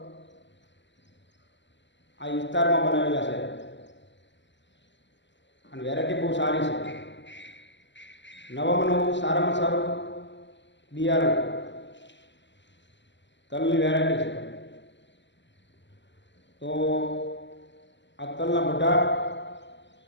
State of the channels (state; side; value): late; right; 0.53 ms